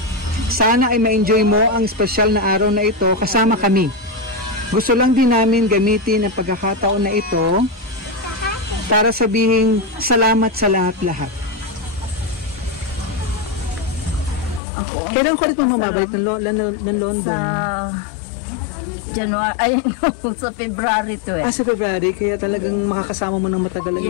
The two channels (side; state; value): right; drops out; at 14.6 s